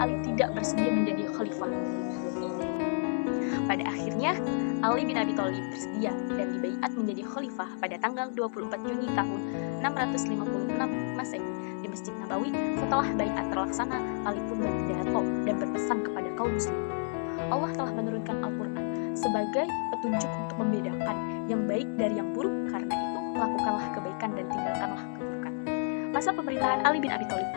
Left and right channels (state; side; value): silent; right; 57 dB below the other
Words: tidak bersedia menjadi khalifah. Pada akhirnya, Ali bin Abi Thalib bersedia dan dibaiat menjadi khalifah pada tanggal 24 Juni tahun 656 Masehi di Masjid Nabawi. Setelah baiat terlaksana, Ali pun berpidato dan berpesan kepada kaum muslimin. Allah telah menurunkan Al-Quran sebagai petunjuk untuk membedakan yang baik dari yang buruk. Karena itu, lakukanlah kebaikan dan tinggalkanlah keburukan. Masa pemerintahan Ali bin Abi Thalib